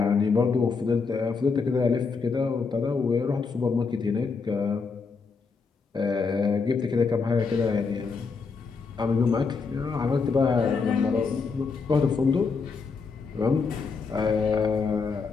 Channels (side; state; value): right; quieter; 4.9 dB